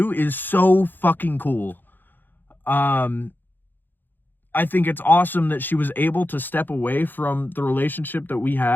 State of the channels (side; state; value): right; late; 0.091 ms